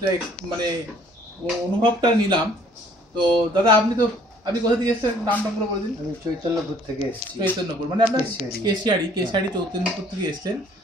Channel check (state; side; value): normal; both; correlation 0.58